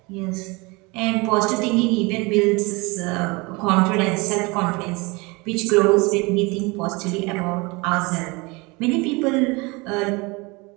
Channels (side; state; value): left; quieter; 26.1 dB